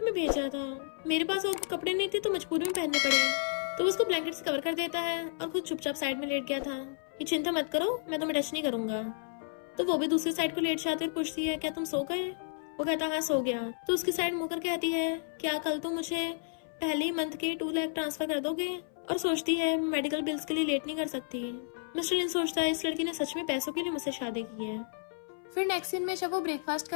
भेजा था, मेरे पास और कपड़े नहीं थे तो मजबूरी में पहनने पड़े। तो उसको ब्लैंकेट से कवर कर देता है और खुद चुपचाप साइड में लेट गया था कि चिंता मत करो, मैं तुम्हें टच नहीं करूंगा। तो वो भी दूसरी साइड को लेट जाती और पूछती है, क्या तुम सो गए। वो कहता, हाँ सो गया। तो उसकी साइड मुंह कर कहती है, क्या कल तुम मुझे पहले ही मंथ के 2 लाख ट्रांसफर कर दोगे। और सोचती है, मेडिकल बिल्स के लिए लेट नहीं कर सकती। मिस्टर लिन सोचता है, इस लड़की ने सच में पैसों के लिए मुझसे शादी की है। फिर नेक्स्ट सीन में जब वो ब्रेकफास्ट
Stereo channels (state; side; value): silent; right; 57 dB below the other